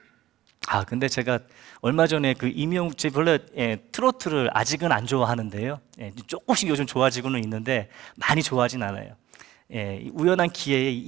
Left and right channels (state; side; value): quieter; left; 14.6 dB